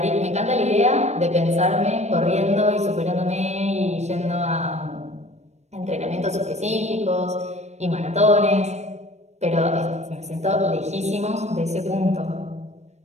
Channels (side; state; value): left; late; 0.32 ms